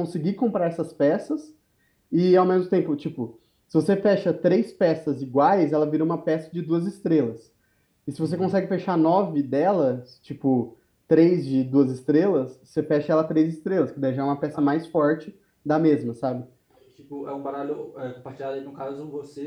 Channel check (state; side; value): identical; both; correlation 1.00